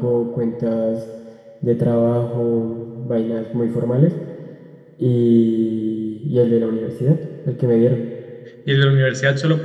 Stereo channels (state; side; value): identical; both; correlation 1.00